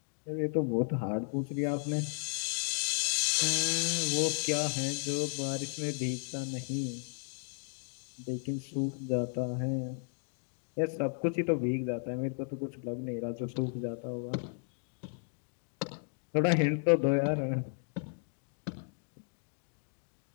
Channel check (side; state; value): right; silent; 55 dB below the other